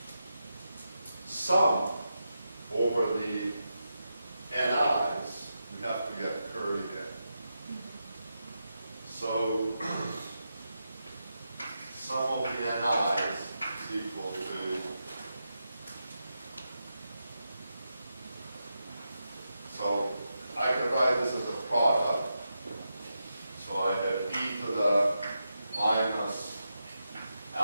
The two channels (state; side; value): inverted; both; correlation -0.87